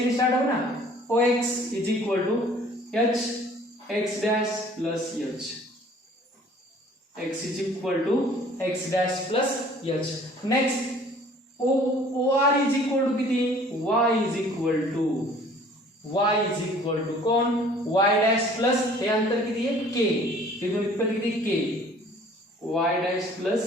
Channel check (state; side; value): normal; both; correlation 0.53